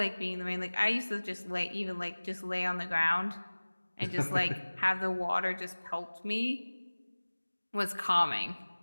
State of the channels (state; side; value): inverted; both; correlation -1.00